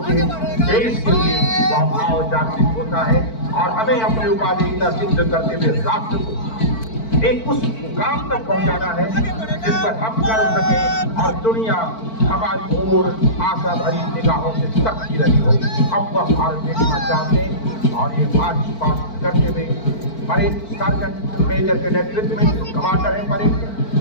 है देश के लिए, वह भाव जागृत होता है और हमें अपनी उपाधिकता सिद्ध करते हुए राष्ट्र को एक उस मुकाम तक पहुंचाना है जिस पर हम कर सके और दुनिया हमारी ओर आशा भरी निगाहों से तकती रही हो। हम वह भारत देखना चाहते हैं और ये मार्च पास्ट करते हुए परेड सार्जेंट मेजर के नेतृत्व में कमांडर है परेड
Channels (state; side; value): late; right; 4.5 ms